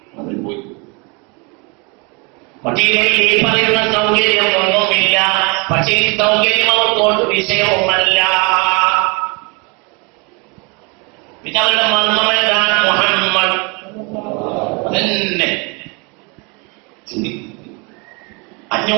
മദീനയിൽ ഈ പറയുന്ന സൗകര്യം ഒന്നുമില്ല. പക്ഷേ ഈ സൗകര്യം അവർക്കോട്ട് വിഷയവുമല്ല. പിന്നെ അവരുടെ മർമ്മം എന്താണ്? മുഹമ്മദ് തന്നെ.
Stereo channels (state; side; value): quieter; left; 30.6 dB